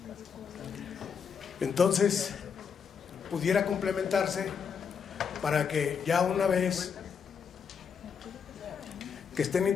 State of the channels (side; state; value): right; quieter; 6.6 dB